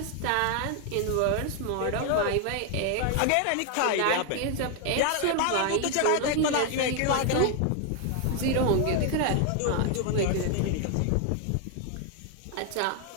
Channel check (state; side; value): different; both; correlation 0.01